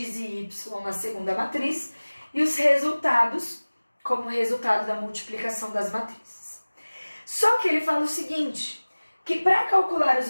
e y na segunda matriz, e os resultados como resultado da multiplicação das matrizes. Só que ele fala o seguinte, que para calcular os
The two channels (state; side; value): inverted; both; correlation -1.00